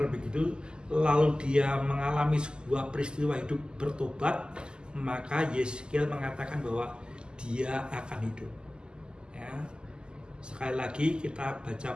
begitu, lalu dia mengalami sebuah peristiwa hidup bertobat, maka Yeskiel mengatakan bahwa dia akan hidup ya. Sekali lagi kita baca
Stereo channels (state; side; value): late; left; 0.047 ms